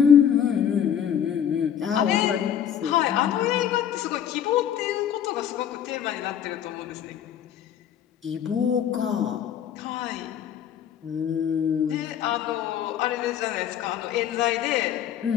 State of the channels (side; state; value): right; quieter; 9.3 dB